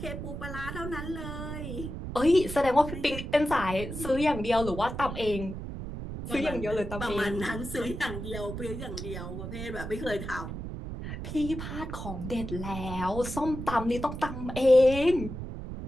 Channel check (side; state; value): right; noise; rumble, 7 dB below the sound